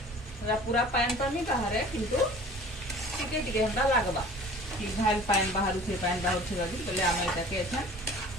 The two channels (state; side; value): normal; both; correlation 0.46